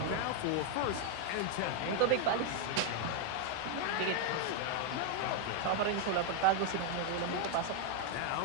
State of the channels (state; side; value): different; both; correlation 0.00